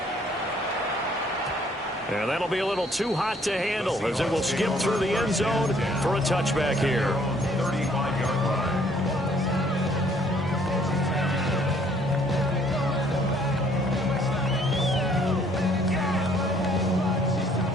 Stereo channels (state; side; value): normal; both; correlation 0.62